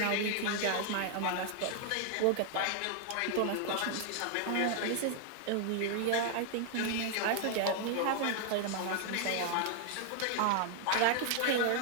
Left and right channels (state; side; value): different; both; correlation 0.00